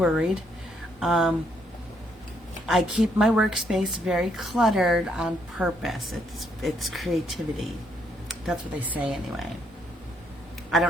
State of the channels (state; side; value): normal; both; correlation 0.73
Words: I keep my workspace very cluttered on purpose. It's creativity. That's what they say anyway. I